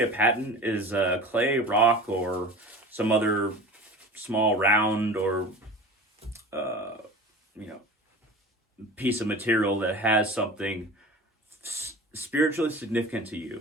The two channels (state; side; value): normal; both; correlation 0.37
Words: a pattern is a clay, rock, or some other small round or piece of material that has something spiritually significant to